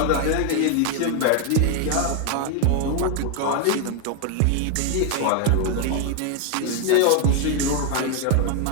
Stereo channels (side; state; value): both; different; correlation 0.01